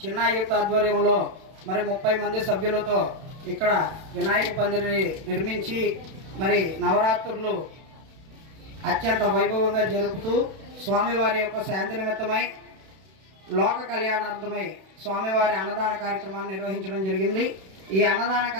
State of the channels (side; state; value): left; late; 32 ms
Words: చిన్న యూత్ ఆధ్వర్యంలో మరి 30 మంది సభ్యులతో ఇక్కడ వినాయక పందిరిని నిర్మించి మరి నవరాత్రులు అత్యంత వైభవంగా జరుపుతూ స్వామివారి యొక్క శాంతి నిమిత్తమై లోక కళ్యాణార్థమై స్వామివారి అన్నదాన కార్యక్రమాన్ని నిర్వహించడం జరిగింది. ఈ అన్నదాన